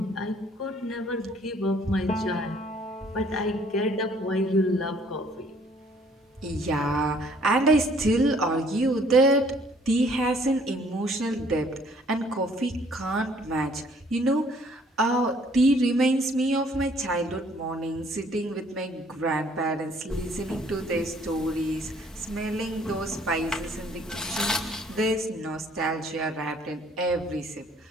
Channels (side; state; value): both; normal; correlation 0.60